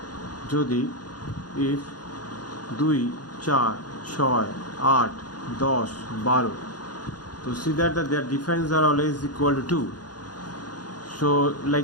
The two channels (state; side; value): late; right; 0.69 ms